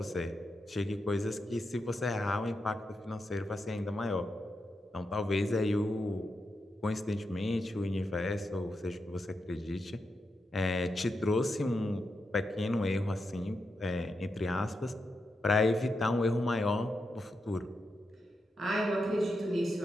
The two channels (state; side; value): normal; both; correlation 0.86